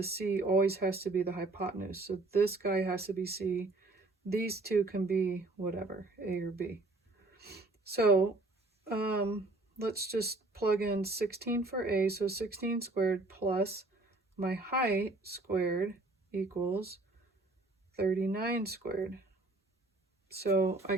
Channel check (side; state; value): left; quieter; 3.2 dB